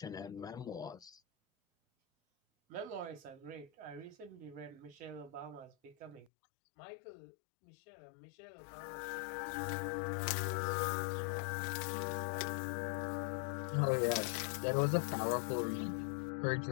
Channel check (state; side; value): drops out; right; at 6.2 s